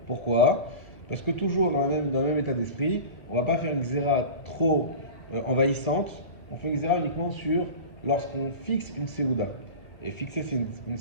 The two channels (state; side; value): late; right; 1.1 ms